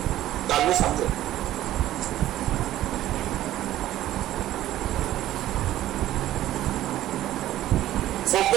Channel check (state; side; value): quieter; left; 13.8 dB